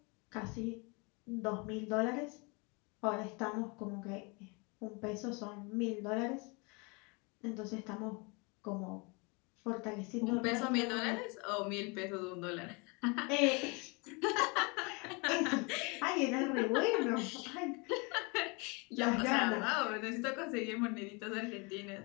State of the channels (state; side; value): quieter; right; 30.0 dB